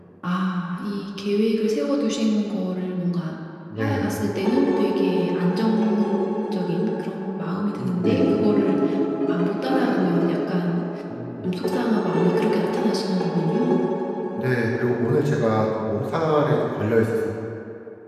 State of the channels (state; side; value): identical; both; correlation 1.00